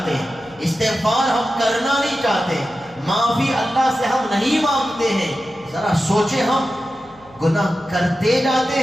استغفار ہم کرنا نہیں چاہتے، معافی اللہ سے ہم نہیں مانگتے ہیں۔ ذرا سوچیں، ہم گناہ کرتے جاتے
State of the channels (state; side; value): noise; left; hum, 28 dB below the sound